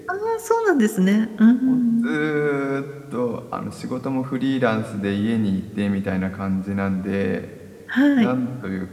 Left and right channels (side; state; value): both; identical; correlation 1.00